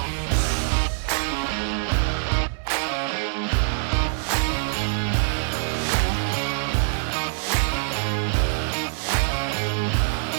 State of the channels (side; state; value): left; silent; 58 dB below the other